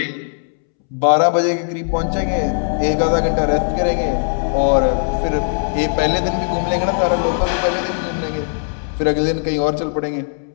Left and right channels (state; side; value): silent; right; 67 dB below the other